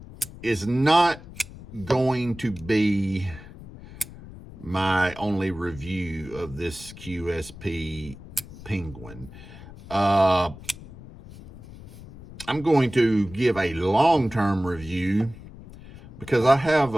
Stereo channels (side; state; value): left; noise; rumble, 17 dB below the sound